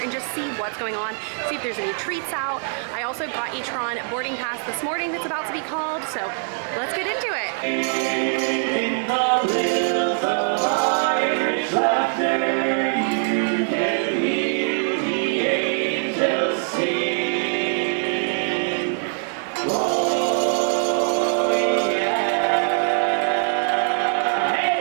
just see what's going on, see if there's any treats out. I also got a Tron boarding pass this morning that's about to be called, so let's get into it. In the hills of Irish laughter, you can hear the angels sing. Oh yeah.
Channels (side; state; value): left; silent; 59 dB below the other